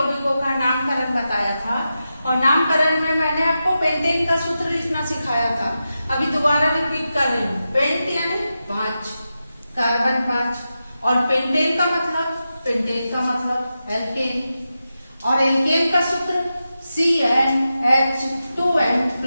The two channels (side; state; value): both; inverted; correlation -0.90